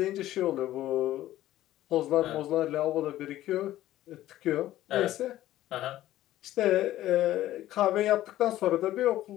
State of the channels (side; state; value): right; quieter; 14.3 dB